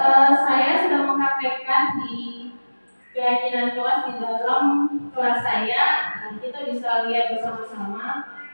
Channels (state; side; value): inverted; both; correlation -1.00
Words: saya sudah mempraktekkan di keyakinan kelas di dalam kelas saya. Kita bisa lihat bersama-sama.